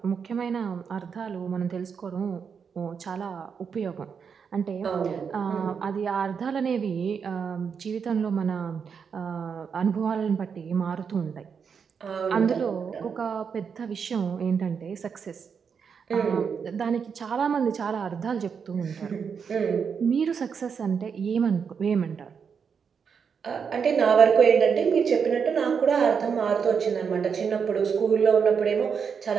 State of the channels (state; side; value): quieter; left; 6.5 dB